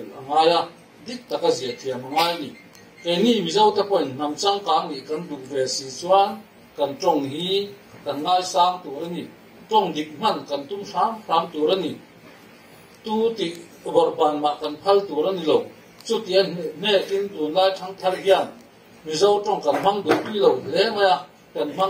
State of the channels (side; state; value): both; identical; correlation 1.00